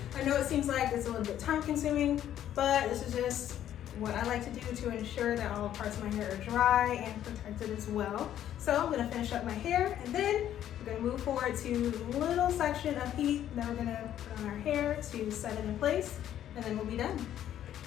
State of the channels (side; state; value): right; quieter; 11.2 dB